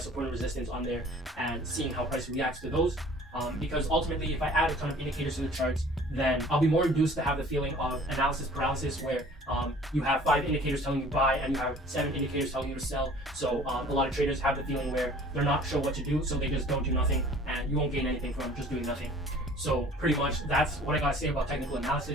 and resistance on there and seeing how price reacts to those. Because ultimately, if I add a ton of indicators to the charts, then I'll be more induced to have the feeling of analysis paralysis, where you have 5 indicators telling you buy and you have 7 indicators telling you to sell. So a lot of traders have the feeling where they're not sure what to do, so they just don't do nothing, and you won't gain anything from just doing nothing. So pretty much that's what I gotta say about technical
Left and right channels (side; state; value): both; normal; correlation 0.50